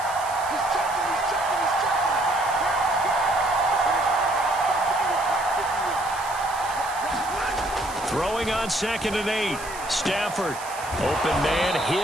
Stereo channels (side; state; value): right; noise; hiss, 14 dB below the sound